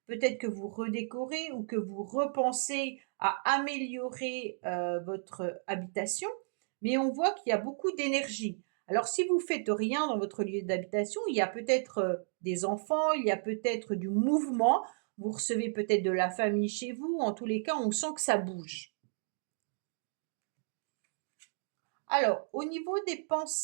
Peut-être que vous redécorez ou que vous repensez à améliorer votre habitation, mais on voit qu'il y a beaucoup d'énergie. Alors, si vous faites rien dans votre lieu d'habitation, il y a peut-être des enfants, il y a peut-être du mouvement. Vous recevez peut-être de la famille chez vous. En tous les cas, on sent que ça bouge. Alors, au niveau des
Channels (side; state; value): left; silent; digital silence